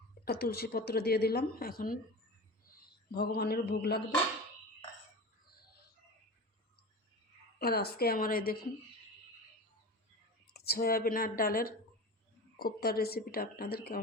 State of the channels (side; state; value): both; normal; correlation 0.30